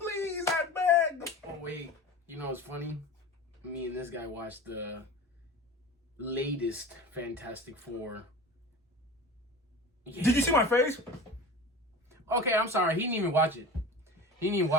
I beg! Oh, wait. You know what's funny? Me and this guy watched the latest Fantastic Four. Yeah. Did you see my face? Okay, I'm sorry. He didn't even watch it.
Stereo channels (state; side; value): normal; both; correlation 0.34